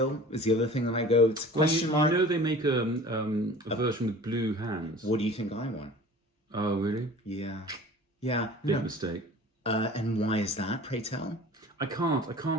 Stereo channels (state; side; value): normal; both; correlation 0.43